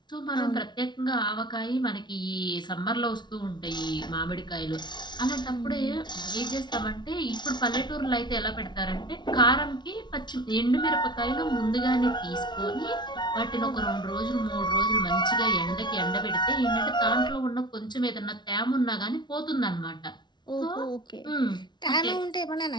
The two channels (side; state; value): right; late; 0.21 ms